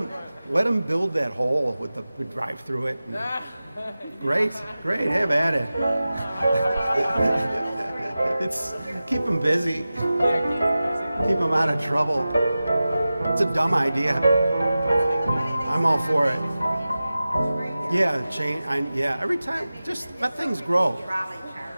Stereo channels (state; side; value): inverted; both; correlation -0.95